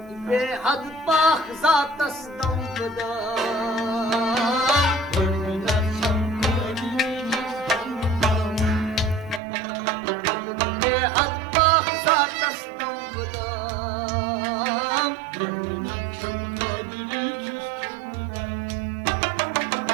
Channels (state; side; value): drops out; left; at 9.4 s